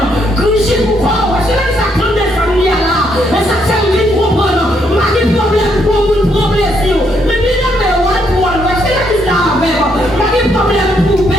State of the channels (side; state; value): both; normal; correlation 0.74